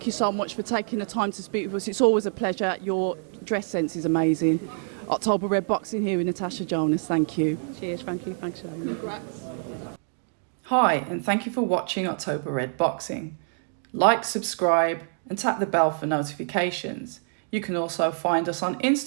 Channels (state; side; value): silent; left; 61 dB below the other